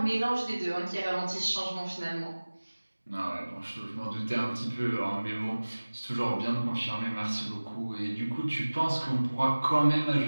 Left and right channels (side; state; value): both; inverted; correlation -1.00